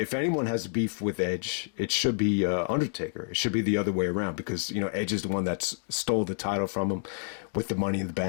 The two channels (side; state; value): right; silent; digital silence